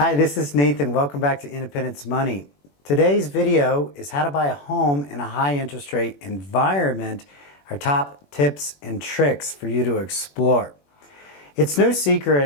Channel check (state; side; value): late; right; 21 ms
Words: this is Nathan. Welcome back to Independence Money. Today's video is how to buy a home in a high interest rate environment, our top tips and tricks for you to explore. It's no